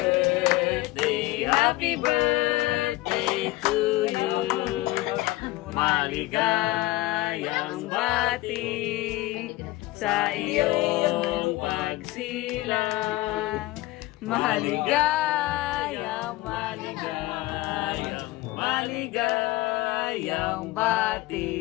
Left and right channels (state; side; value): quieter; right; 18.4 dB